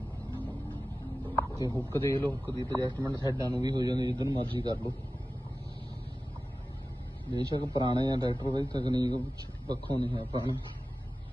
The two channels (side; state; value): both; normal; correlation 0.95